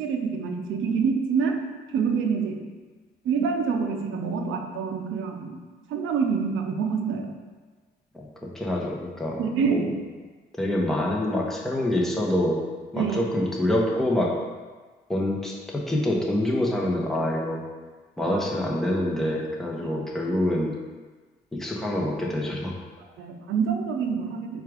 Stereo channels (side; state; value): both; normal; correlation 0.66